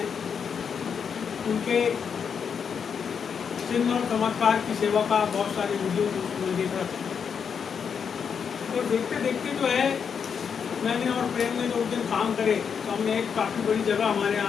उनके चिन्ह और चमत्कार की सेवा का बहुत सारे वीडियो मैं देख रहा था। तो देखते देखते जो है मैंने और प्रेम ने जो उस दिन काम करे तो हमने एक काफ़ी बड़ी जगह हमारे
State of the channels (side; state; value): right; quieter; 6.8 dB